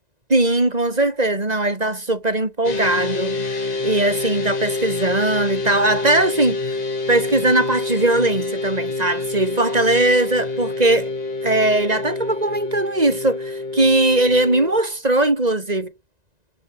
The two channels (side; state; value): left; late; 1.9 ms